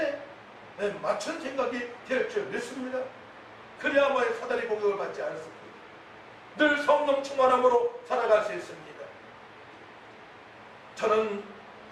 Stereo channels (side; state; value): both; identical; correlation 1.00